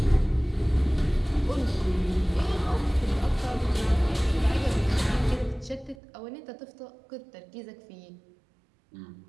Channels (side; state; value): left; drops out; at 6.0 s